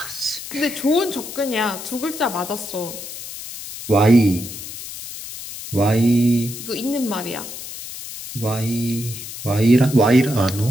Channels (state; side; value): noise; left; hiss, 11 dB below the sound